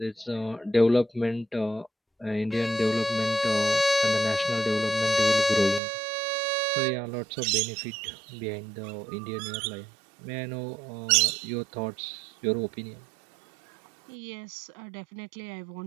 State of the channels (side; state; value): left; drops out; at 5.8 s